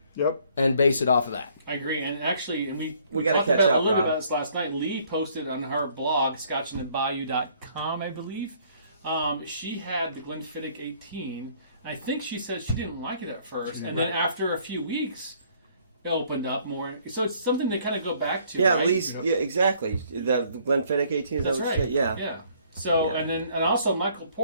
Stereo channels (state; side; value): inverted; both; correlation -0.62